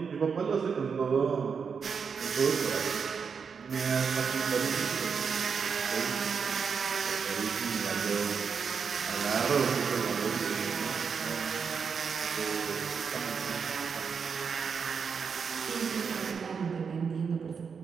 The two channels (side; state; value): left; quieter; 6.1 dB